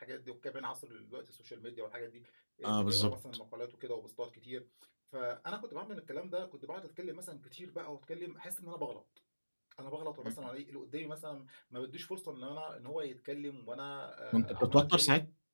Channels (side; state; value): both; inverted; correlation -1.00